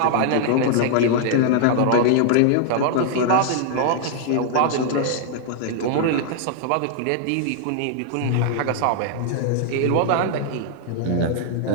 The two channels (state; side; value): different; both; correlation -0.01